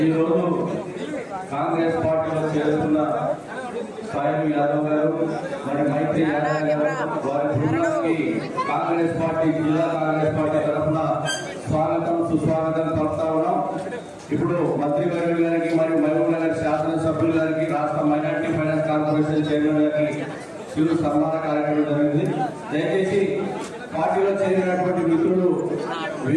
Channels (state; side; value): identical; both; correlation 1.00